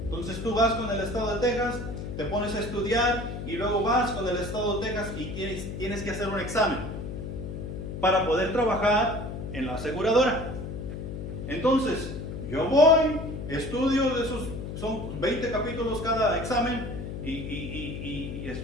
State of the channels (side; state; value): left; noise; hum, 7 dB below the sound